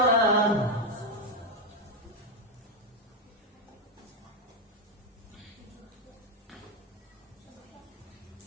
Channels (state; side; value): normal; both; correlation 0.05